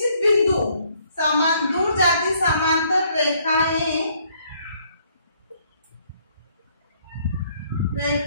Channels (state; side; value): inverted; both; correlation -0.66